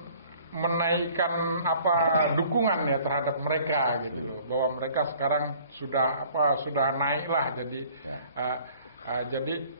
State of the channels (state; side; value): inverted; both; correlation -0.54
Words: dukungan ya terhadap mereka gitu loh, bahwa mereka sekarang sudah naik lah, jadi